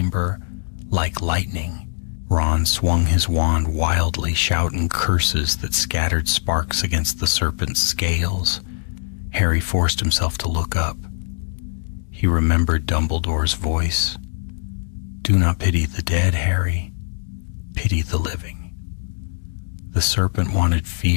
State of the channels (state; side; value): silent; right; digital silence